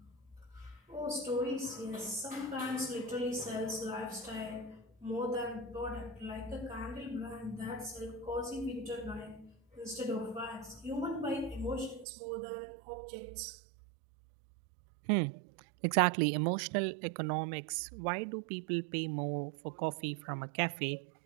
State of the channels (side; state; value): left; drops out; at 12.1 s